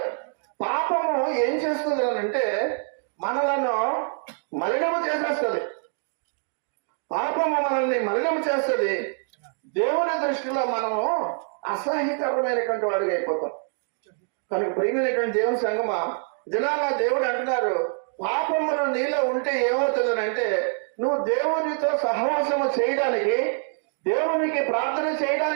పాపము ఏం చేస్తుంది అంటే మనలను మలినము చేసేస్తుంది. పాపము మనల్ని మలినము చేస్తుంది. దేవుని దృష్టిలో మనము అసహ్యకరమైనటువంటి వాడిగా అయిపోతాం. కనుక ప్రియమైనటువంటి దేవుని సంగమా, దినాన దేవుడు అంటున్నారు, పాపమును నీలో ఉంటే ఏమవుతుందని అంటే నువ్వు దేవునితో సహవాసము చేయడానికి, దేవునికి ప్రార్థన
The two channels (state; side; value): silent; left; 58 dB below the other